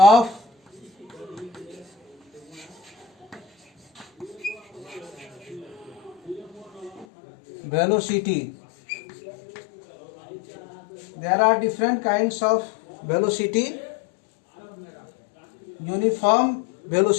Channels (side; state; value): right; drops out; at 7.1 s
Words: velocity. There are different kinds of velocity. Uniform